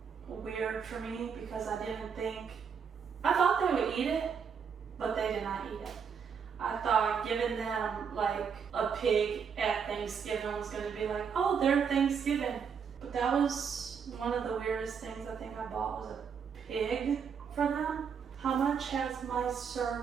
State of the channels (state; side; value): quieter; left; 6.7 dB